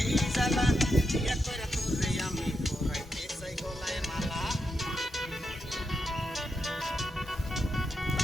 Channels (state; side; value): normal; both; correlation 0.85